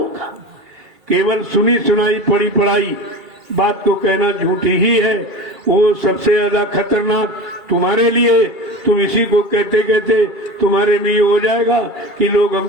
केवल सुनी सुनाई पढ़ी पढ़ाई बात को कहना झूठी ही है। वो सबसे ज्यादा खतरनाक तुम्हारे लिए। तुम इसी को कहते कहते तुम्हारे में ये हो जाएगा कि लोग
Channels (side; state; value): left; late; 2.3 ms